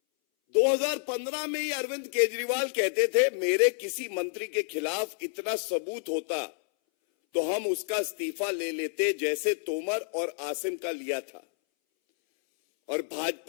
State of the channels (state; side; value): silent; right; 58 dB below the other